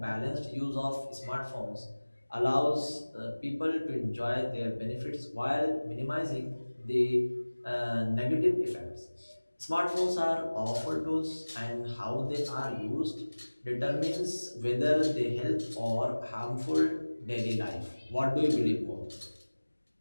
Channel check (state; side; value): inverted; both; correlation -1.00